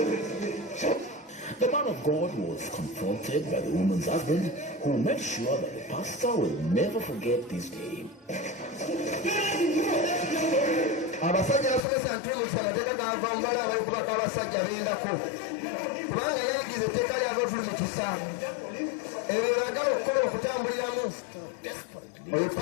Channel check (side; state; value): right; drops out; at 11.8 s